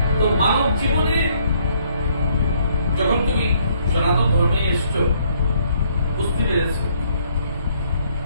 তো মানব জীবনে যখন তুমি সনাতন ধর্মে এসছো, বুঝতে পেরেছ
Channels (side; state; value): both; inverted; correlation -0.67